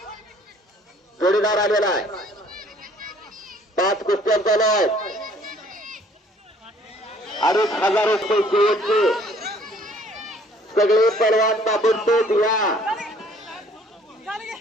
जोडीदार आलेला आहे. 5 कुस्त्या चालू आहेत. 2,500 रुपये शेवटचे. सगळे पलवान ताबडतोब या.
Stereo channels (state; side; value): normal; both; correlation 0.58